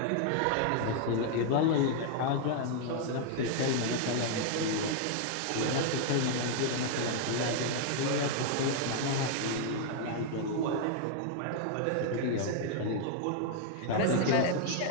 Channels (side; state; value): both; different; correlation 0.00